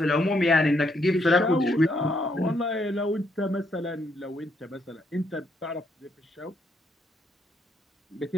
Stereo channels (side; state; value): both; normal; correlation 0.74